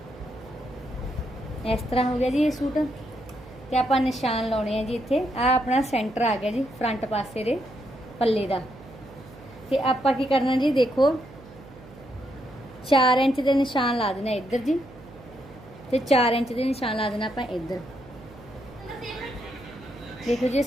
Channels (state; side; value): noise; right; hum, 20 dB below the sound